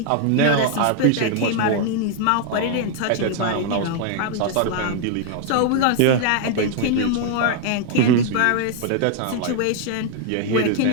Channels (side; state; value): both; different; correlation 0.00